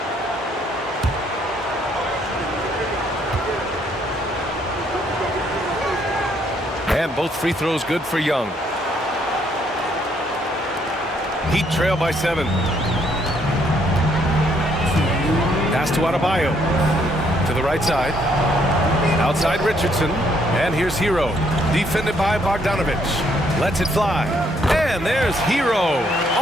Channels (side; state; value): both; normal; correlation 0.69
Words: And both free throws good for Young. Heat trail by 7. Pass to Adebayo. To the right side. Outside Richardson. And here's Hero. Defended by Bogdanovich. Lets it fly. And there's Hero